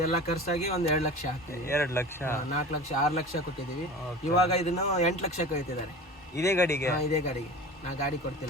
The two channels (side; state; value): both; normal; correlation 0.36